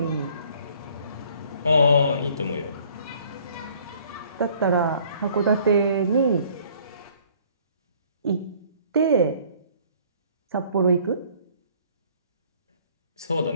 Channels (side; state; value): both; inverted; correlation -0.58